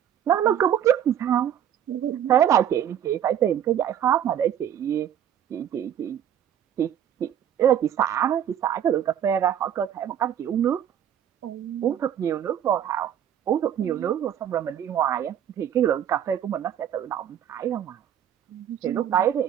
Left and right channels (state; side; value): quieter; left; 9.9 dB